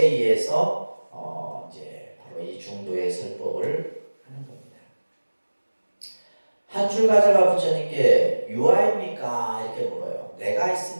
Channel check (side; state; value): both; inverted; correlation -1.00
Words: 의해서 이제 바로 이 중도의 설법을 하는 겁니다. 한 출가자가 부처님께 유아입니까? 이렇게 물어요. 내가